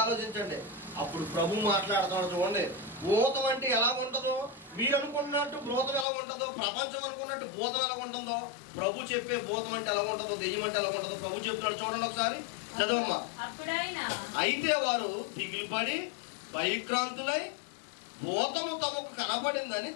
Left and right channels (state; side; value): drops out; right; at 6.1 s